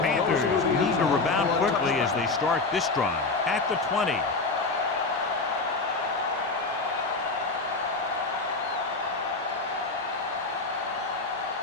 need to rebound quickly as they start this drive at the 20.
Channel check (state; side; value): quieter; right; 3.7 dB